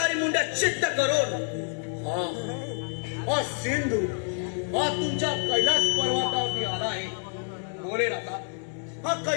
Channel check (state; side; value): silent; right; 60 dB below the other